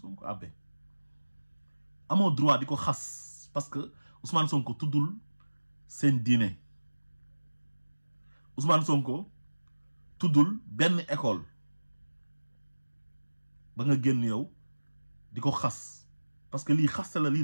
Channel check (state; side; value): inverted; both; correlation -1.00